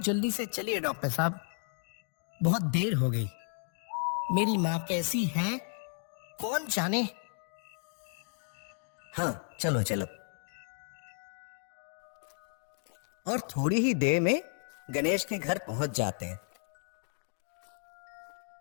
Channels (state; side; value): silent; right; 55 dB below the other